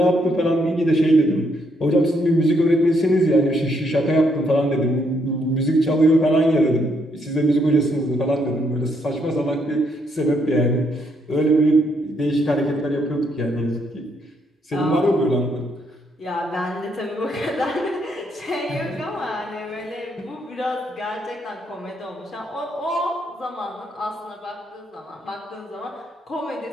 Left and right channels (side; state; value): both; normal; correlation 0.74